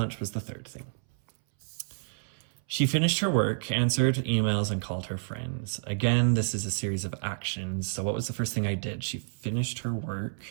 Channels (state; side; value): silent; left; 58 dB below the other